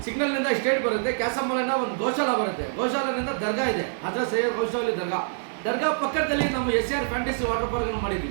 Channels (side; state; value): left; silent; digital silence